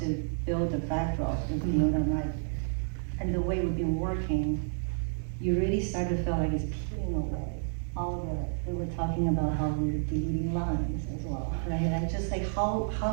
to build the backdrop with Fiona and I. And the way we've been working, you really start to feel like it's peeling away. We were talking about how we're deleting lines as well, right? And just like how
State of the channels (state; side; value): silent; left; 58 dB below the other